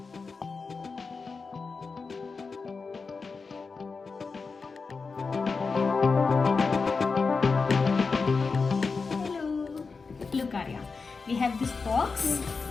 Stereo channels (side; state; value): right; quieter; 4.6 dB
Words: Look Arya, we have this box